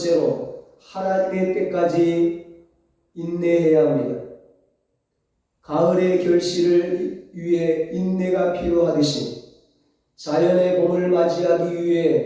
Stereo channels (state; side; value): identical; both; correlation 1.00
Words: 하나님의 때까지 인내해야 합니다. 가을의 결실을 위해 인내가 필요하듯이 자연의 봄을 맞이하기